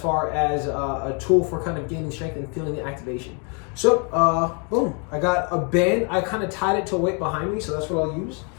as a tool for kind of gaining strength and feeling the activation. So, boom, I got a band. I kind of tied it to a weight behind me, so that's what I'll use.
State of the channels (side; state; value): right; quieter; 36.6 dB